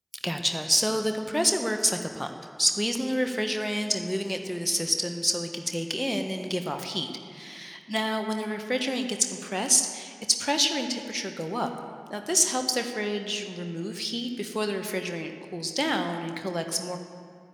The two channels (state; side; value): identical; both; correlation 1.00